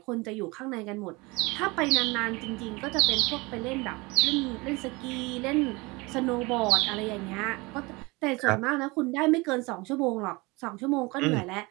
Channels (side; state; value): left; quieter; 24.8 dB